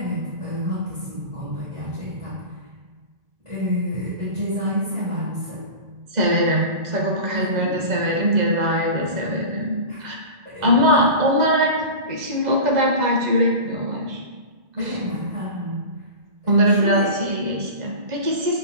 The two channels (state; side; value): late; left; 2.0 ms